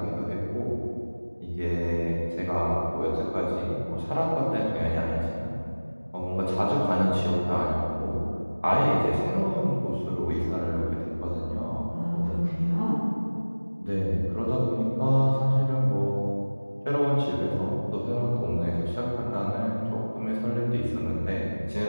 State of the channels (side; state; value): both; inverted; correlation -1.00